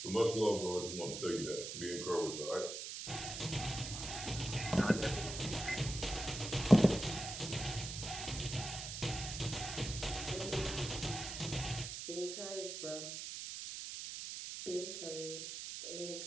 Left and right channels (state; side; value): noise; right; hiss, 7 dB below the sound